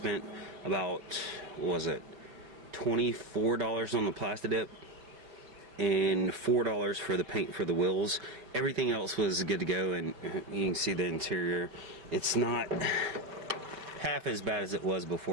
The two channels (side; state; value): left; late; 5.4 ms